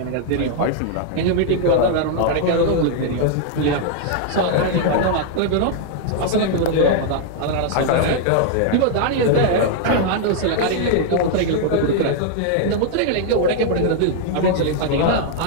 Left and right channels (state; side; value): different; both; correlation 0.00